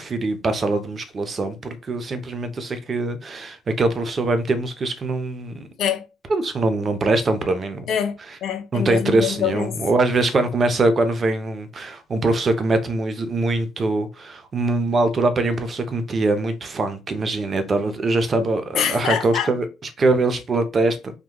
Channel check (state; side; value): normal; both; correlation 0.76